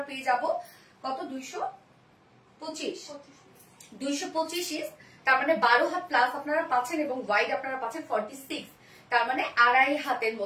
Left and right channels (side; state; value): both; identical; correlation 1.00